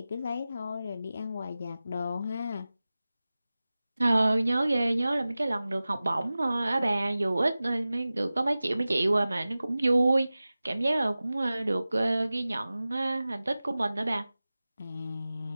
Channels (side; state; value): both; inverted; correlation -0.96